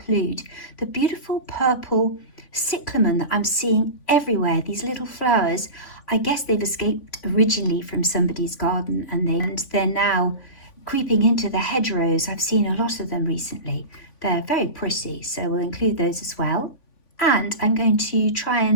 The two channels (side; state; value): right; late; 3.5 ms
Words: the beautiful purple cyclamen that I'm seeing everywhere. These little flowers I guess they've escaped originally from somebody's garden and they're now creeping into the hedgerows. I've seen a lot of them recently. They're very pretty, so we'll include those as well. And I'm going to try